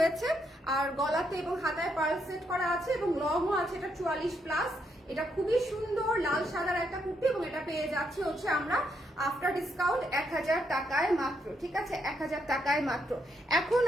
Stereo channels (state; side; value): normal; both; correlation 0.77